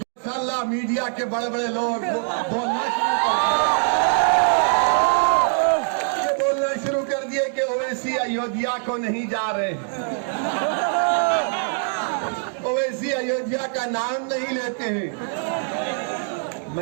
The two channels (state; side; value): silent; left; 56 dB below the other